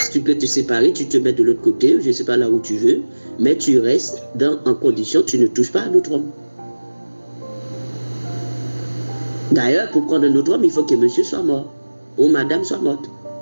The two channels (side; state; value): both; inverted; correlation -1.00